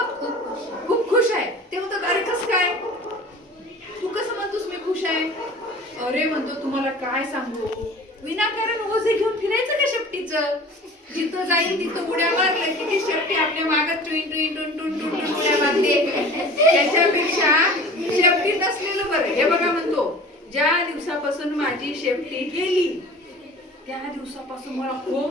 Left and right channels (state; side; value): normal; both; correlation 0.42